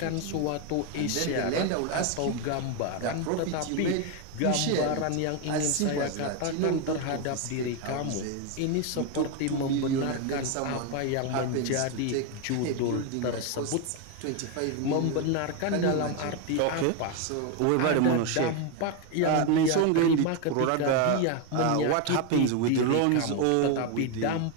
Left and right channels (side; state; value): both; different; correlation 0.01